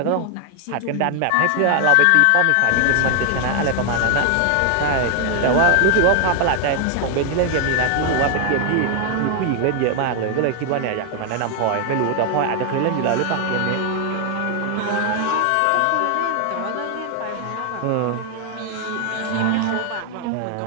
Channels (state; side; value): different; both; correlation 0.00